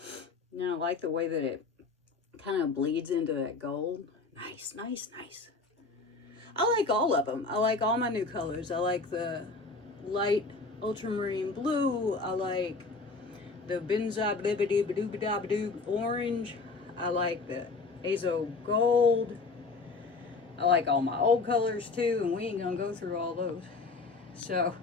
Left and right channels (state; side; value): quieter; right; 3.9 dB